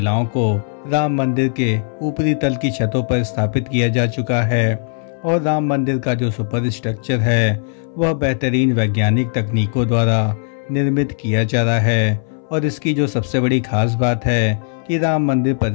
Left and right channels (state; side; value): silent; right; 64 dB below the other